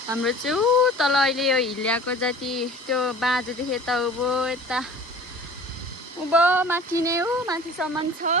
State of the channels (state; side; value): normal; both; correlation 0.44